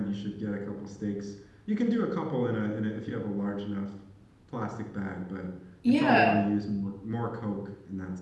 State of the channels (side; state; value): both; identical; correlation 1.00